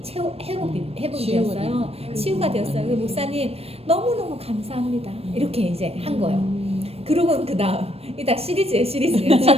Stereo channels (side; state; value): left; late; 0.29 ms